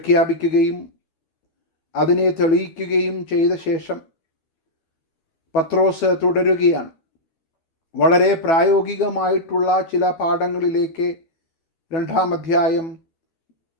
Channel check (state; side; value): late; right; 12 ms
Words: അതിനെ തെളിയിക്കുകയും ചെയ്ത ശേഷം പത്രോസ് തുടരുകയാണ്. വളരെ പ്രായോഗികമായിട്ടുള്ള ചില പാഠങ്ങളിലേക്ക് 2 അധ്യായം